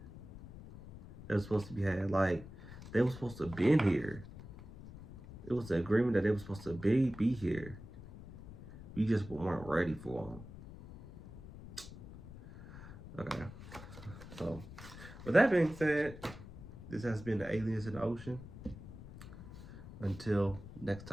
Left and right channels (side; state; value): left; noise; rumble, 15 dB below the sound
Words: that was supposed to be had. Like they were supposed to been here. It was an agreement that they were supposed to be here. We just weren't ready for them. Okay. So, with that being said, this has been the Aliens in the Ocean. Until next